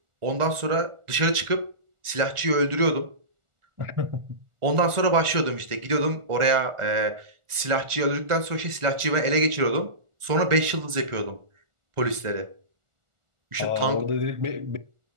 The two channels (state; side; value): late; left; 1.4 ms